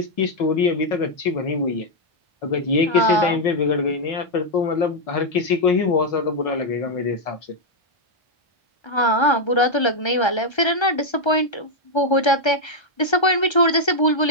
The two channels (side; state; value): right; late; 1.3 ms